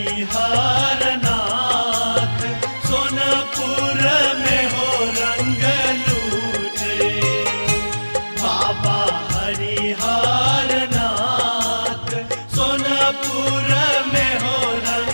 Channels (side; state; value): both; inverted; correlation -1.00